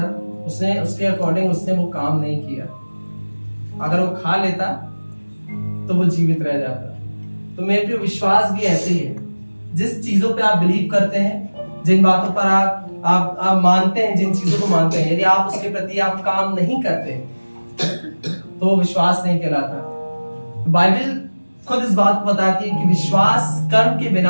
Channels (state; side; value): inverted; both; correlation -1.00